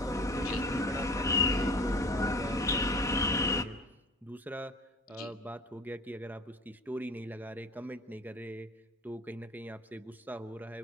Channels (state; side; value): normal; both; correlation 0.41